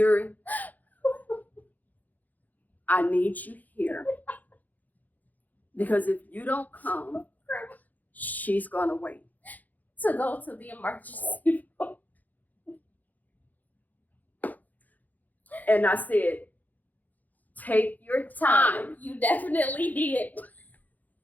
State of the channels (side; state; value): right; late; 0.081 ms